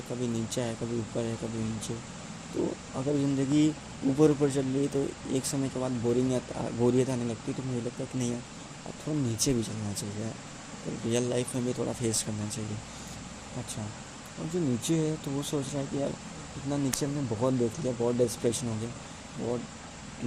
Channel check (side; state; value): both; identical; correlation 1.00